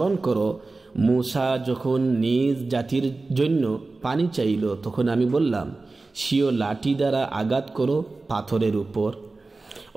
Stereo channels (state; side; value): quieter; left; 3.5 dB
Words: করো, মূসা যখন নিজ জাতির জন্য পানি চাইল, তখন আমি বললাম, স্বীয় লাঠি দ্বারা আঘাত করো পাথরের উপর।